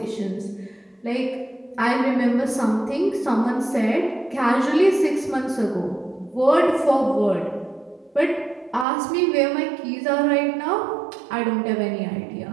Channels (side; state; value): left; drops out; at 8.8 s